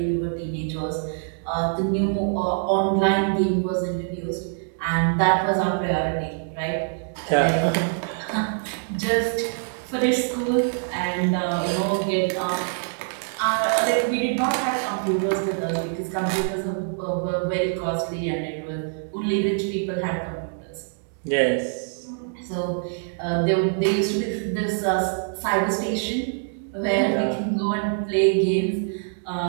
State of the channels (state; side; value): silent; left; digital silence